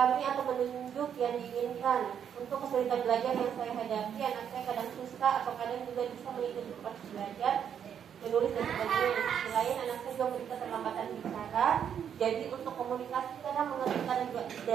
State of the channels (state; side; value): quieter; left; 8.4 dB